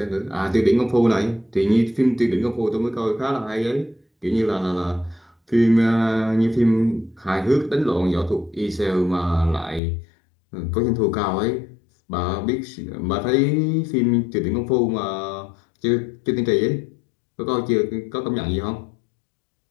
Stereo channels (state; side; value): drops out; right; at 9.8 s